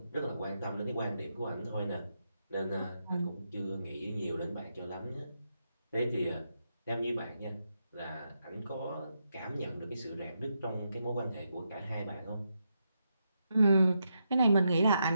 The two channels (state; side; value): inverted; both; correlation -0.83